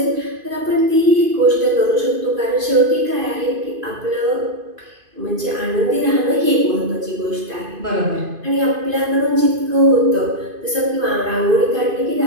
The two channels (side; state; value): left; late; 2.5 ms